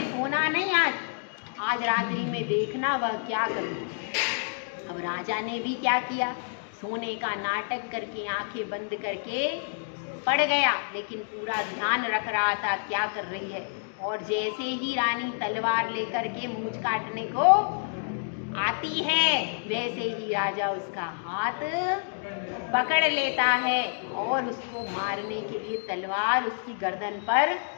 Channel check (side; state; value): right; silent; digital silence